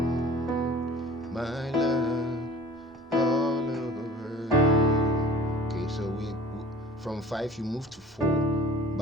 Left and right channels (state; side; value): normal; both; correlation 0.45